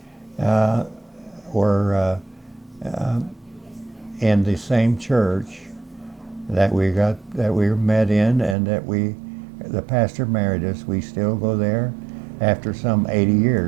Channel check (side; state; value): left; drops out; at 8.6 s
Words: in the same church that we met in, and the pastor married us. We still go there after some 80